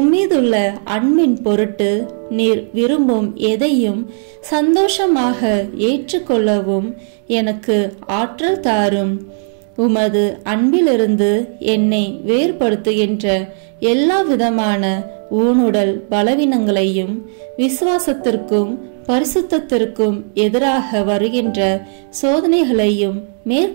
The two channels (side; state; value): left; silent; digital silence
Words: அன்பின் பொருட்டு நீர் விரும்பும் எதையும் சந்தோஷமாக ஏற்றுக்கொள்ளவும் எனக்கு ஆற்றல் தாரும். உமது அன்பிலிருந்து என்னை வேறுபடுத்துகின்ற எல்லா விதமான ஊனுடல் பலவீனங்களையும் விசுவாசத்திற்கும் பரிசுத்தத்திற்கும் எதிராக வருகின்ற சோதனைகளையும்